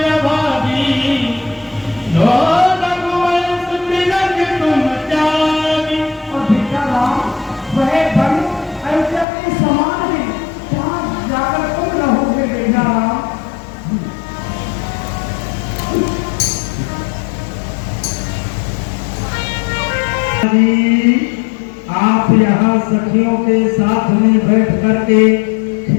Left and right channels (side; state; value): right; drops out; at 9.2 s